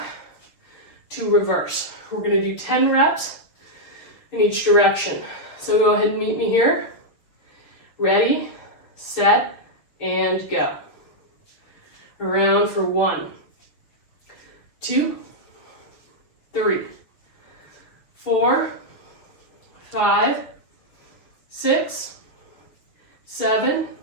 to reverse. We're going to do 10 reps in each direction. So go ahead and meet me here. Ready, set, and go. Around for 1, 2, 3, 4, 5, 6, 7,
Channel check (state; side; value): late; right; 6.6 ms